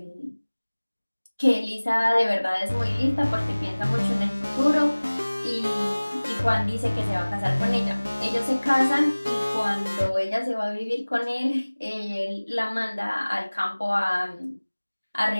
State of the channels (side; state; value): both; inverted; correlation -1.00